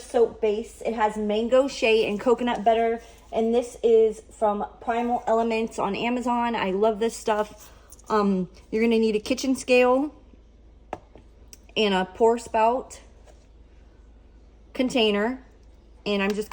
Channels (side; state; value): both; identical; correlation 1.00